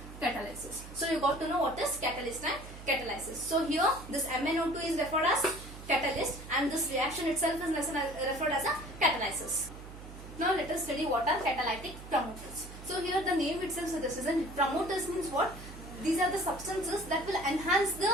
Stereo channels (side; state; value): right; noise; hum, 14 dB below the sound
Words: catalysis. So you got to know what is catalyst and catalysis. So here this MnO2 is referred as catalyst and this reaction itself is referred as a catalysis. Now let us study what are catalytic promoters. So here the name itself suggests, and promoters means what? These are the substances that will enhance the